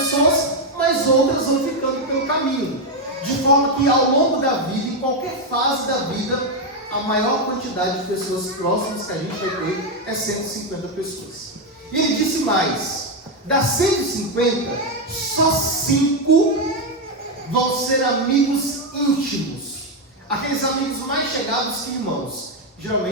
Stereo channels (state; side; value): normal; both; correlation 0.05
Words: mas outras vão ficando pelo caminho. De forma que ao longo da vida, em qualquer fase da vida, a maior quantidade de pessoas próximas que a gente vai ter é 150 pessoas. E ele disse mais: das 150, só 5 vão ser amigos íntimos. Aqueles amigos mais chegados que irmãos.